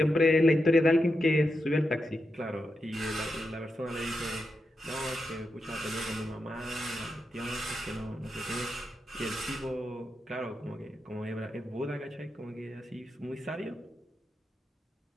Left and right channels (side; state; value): both; normal; correlation 0.87